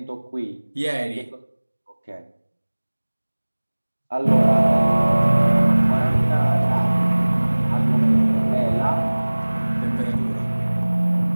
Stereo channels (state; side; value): inverted; both; correlation -1.00